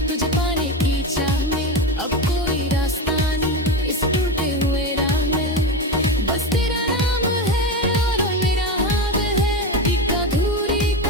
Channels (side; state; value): both; normal; correlation 0.19